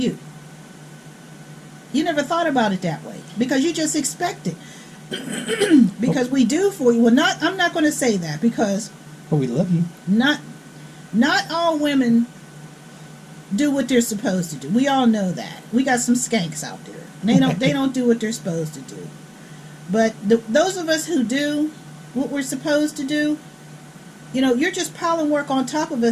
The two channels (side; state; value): both; identical; correlation 1.00